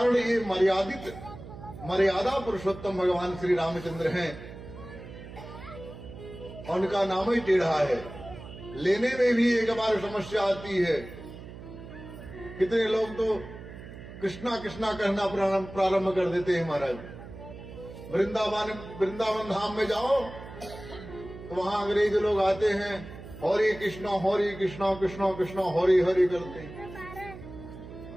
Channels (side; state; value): right; noise; hum, 14 dB below the sound